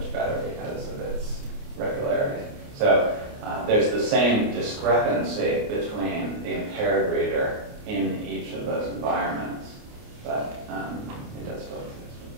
better because of its regularity. So there's the same discrepancy between the impaired reader in each of those environments, but it does still exist.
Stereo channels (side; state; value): left; late; 29 ms